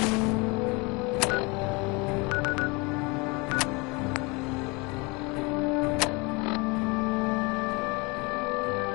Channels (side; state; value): right; quieter; 27.5 dB